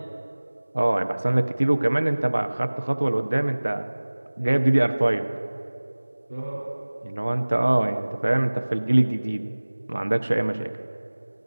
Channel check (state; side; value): inverted; both; correlation -1.00